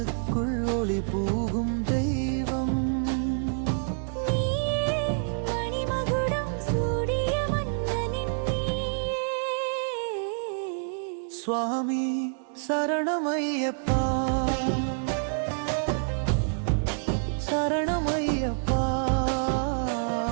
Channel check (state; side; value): silent; left; digital silence